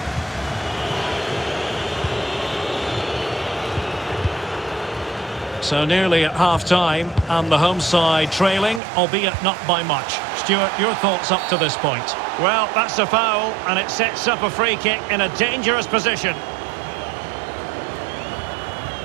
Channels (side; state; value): left; drops out; at 8.8 s